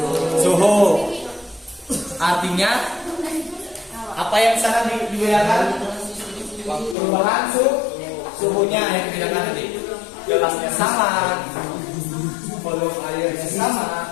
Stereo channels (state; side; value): drops out; right; at 7.0 s